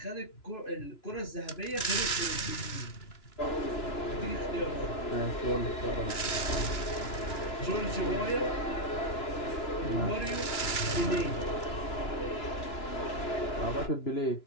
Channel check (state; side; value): late; right; 2.9 ms